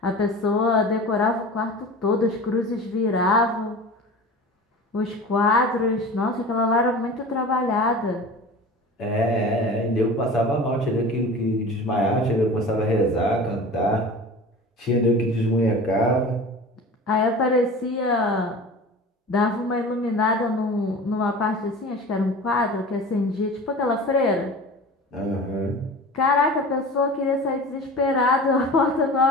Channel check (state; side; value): normal; both; correlation 0.36